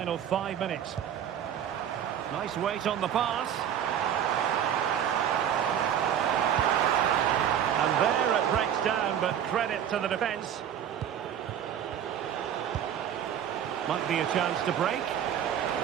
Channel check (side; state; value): left; quieter; 9.4 dB